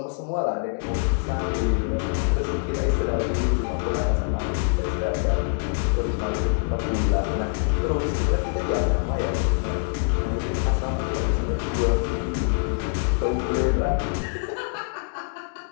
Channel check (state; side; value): silent; right; 62 dB below the other